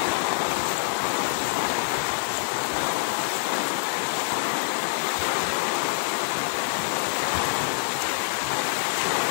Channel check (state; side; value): silent; right; 56 dB below the other